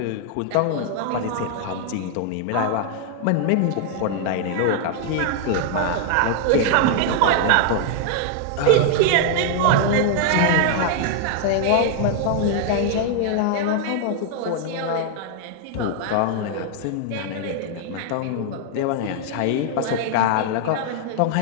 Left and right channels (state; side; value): different; both; correlation 0.00